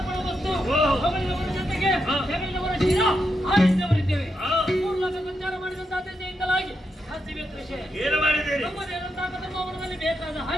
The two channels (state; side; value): normal; both; correlation 0.84